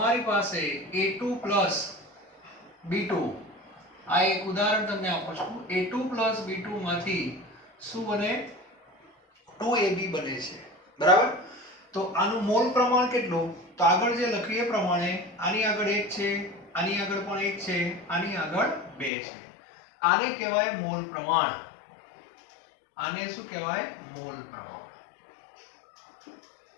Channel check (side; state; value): right; drops out; at 19.1 s